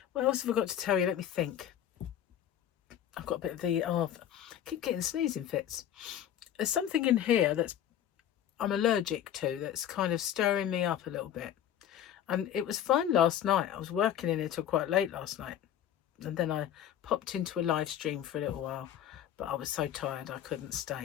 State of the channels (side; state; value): right; quieter; 10.4 dB